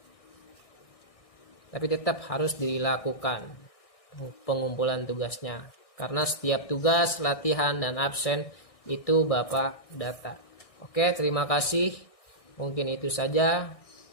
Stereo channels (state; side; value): late; right; 1.6 ms